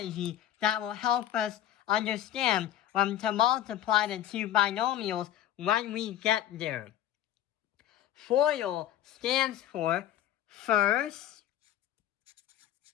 that will help us understand when to multiply the two binomials when we get there. FOIL stands for first,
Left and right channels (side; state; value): right; quieter; 12.0 dB